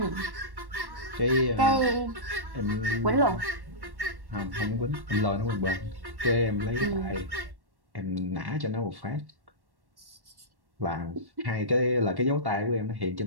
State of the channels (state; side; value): late; left; 1.1 ms